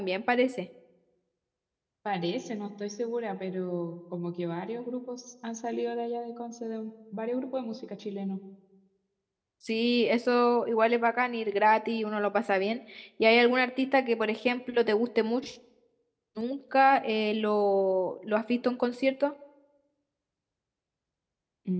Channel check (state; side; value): identical; both; correlation 1.00